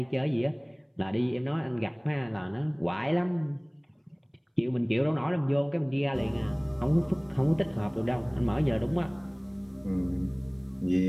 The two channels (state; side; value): identical; both; correlation 1.00